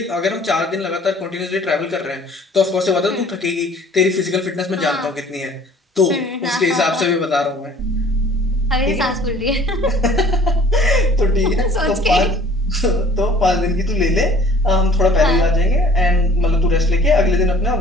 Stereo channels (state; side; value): normal; both; correlation 0.52